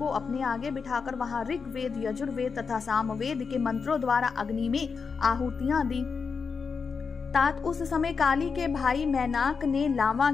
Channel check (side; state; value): right; quieter; 5.4 dB